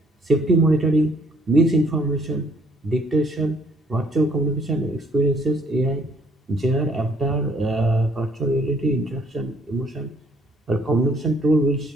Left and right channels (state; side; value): normal; both; correlation 0.64